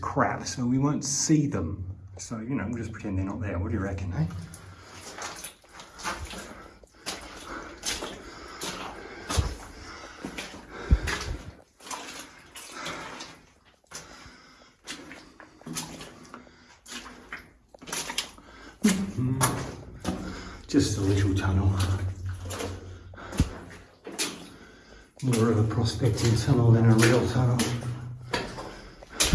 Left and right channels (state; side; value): identical; both; correlation 1.00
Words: so we won't see them. So, you know, we'll just pretend they're not there. What do you reckon, eh? Just a little tunnel. More of a prospecting tunnel than a real tunnel.